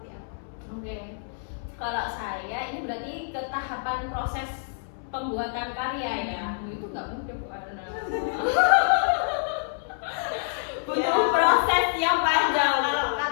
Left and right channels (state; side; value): silent; right; 60 dB below the other